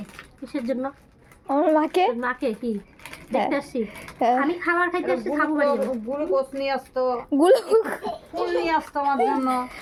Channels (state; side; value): identical; both; correlation 1.00